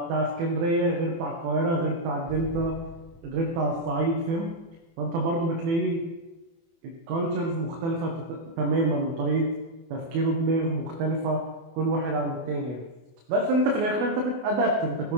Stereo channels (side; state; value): left; late; 24 ms